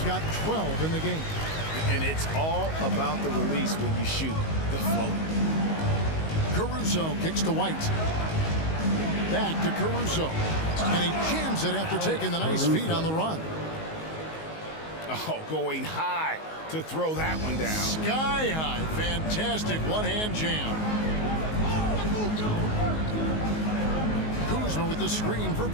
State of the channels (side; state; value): right; late; 19 ms